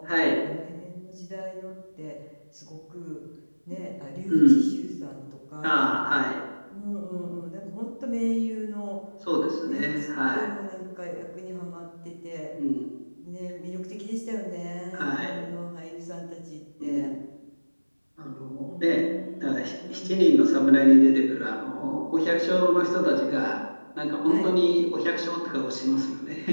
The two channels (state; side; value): inverted; both; correlation -1.00